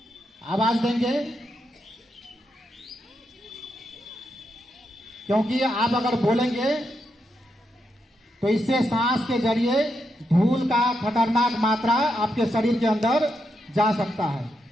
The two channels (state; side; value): normal; both; correlation 0.83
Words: आवाज देंगे क्योंकि आप अगर बोलेंगे तो इससे सांस के जरिए धूल का खतरनाक मात्रा आपके शरीर के अंदर जा सकता है।